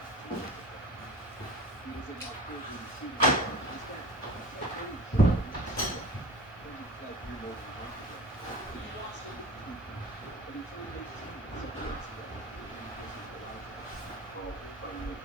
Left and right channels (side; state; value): both; normal; correlation 0.36